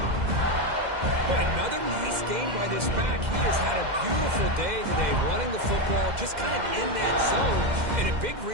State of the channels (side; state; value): left; late; 2.1 ms